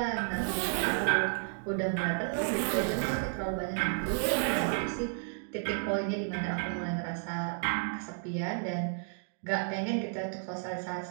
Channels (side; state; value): left; silent; 56 dB below the other